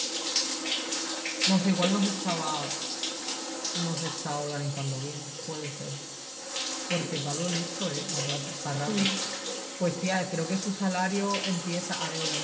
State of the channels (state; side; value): identical; both; correlation 1.00